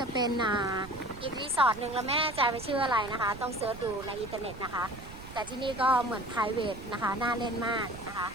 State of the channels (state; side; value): noise; right; rumble, 15 dB below the sound